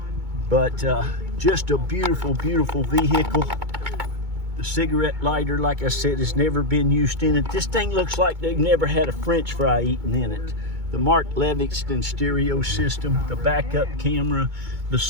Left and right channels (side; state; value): left; late; 2.2 ms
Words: But just a beautiful, beautiful vehicle. The cigarette lighter, like I said, has never been used in it. This thing looks like they've never had a French fry eaten in it. The Mark Livingston stereo system, the backup camera, the